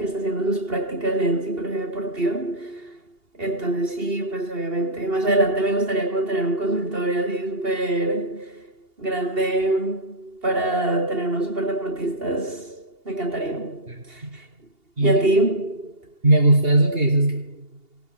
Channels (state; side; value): late; left; 2.8 ms